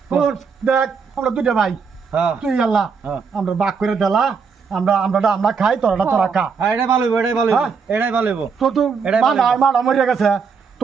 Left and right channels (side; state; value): left; quieter; 5.6 dB